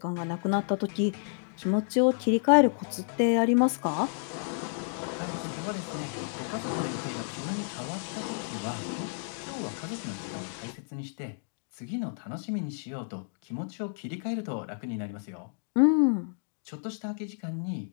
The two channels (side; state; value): right; silent; digital silence